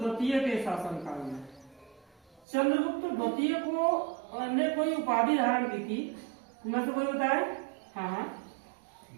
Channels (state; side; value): drops out; left; at 2.5 s